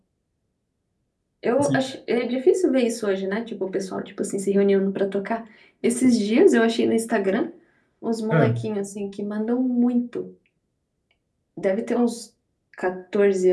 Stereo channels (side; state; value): both; identical; correlation 1.00